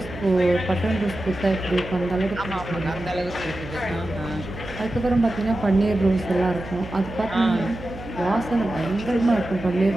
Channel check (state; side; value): noise; right; hum, 13 dB below the sound